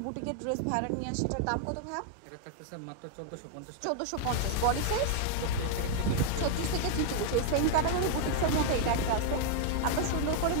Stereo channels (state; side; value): different; both; correlation 0.00